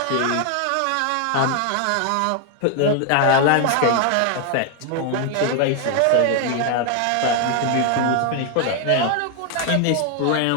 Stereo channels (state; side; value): different; both; correlation 0.01